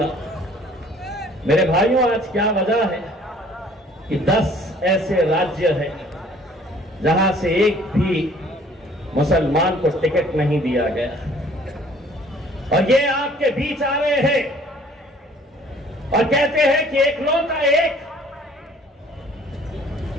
मेरे भाइयों, आज क्या वजह है कि 10 ऐसे राज्य हैं जहां से एक भी मुसलमान को टिकट नहीं दिया गया, और ये आपके बीच आ रहे हैं और कहते हैं कि एकलौता एक,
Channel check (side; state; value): both; normal; correlation 0.55